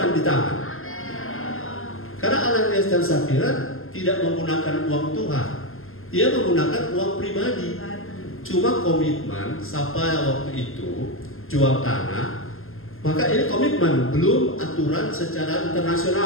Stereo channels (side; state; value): right; late; 0.61 ms